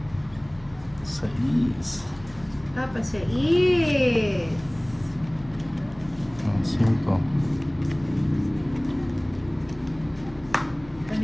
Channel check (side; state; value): left; noise; hum, 22 dB below the sound